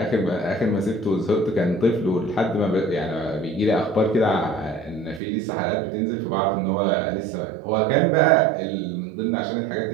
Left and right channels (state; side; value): drops out; left; at 5.2 s